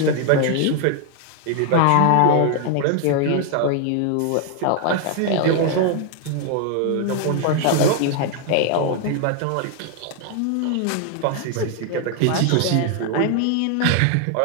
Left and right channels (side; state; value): both; different; correlation 0.00